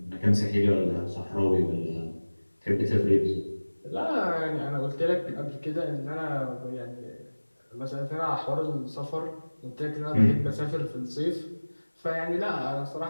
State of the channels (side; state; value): both; inverted; correlation -1.00